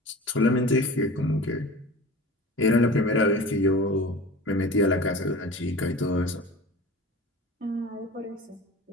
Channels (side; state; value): both; normal; correlation 0.37